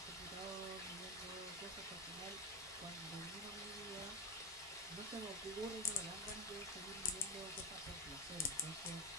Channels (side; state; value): both; normal; correlation 0.12